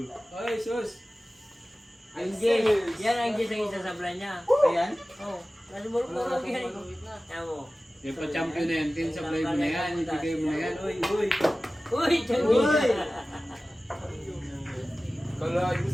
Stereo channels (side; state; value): both; normal; correlation 0.96